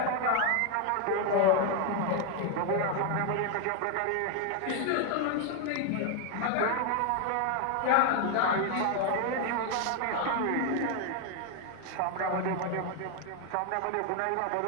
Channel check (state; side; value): different; both; correlation 0.01